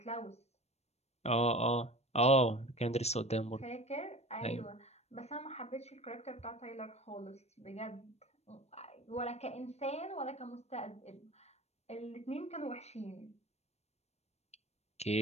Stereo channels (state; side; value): late; right; 0.31 ms